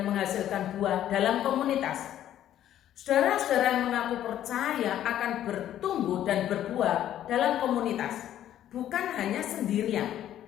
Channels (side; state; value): right; quieter; 11.7 dB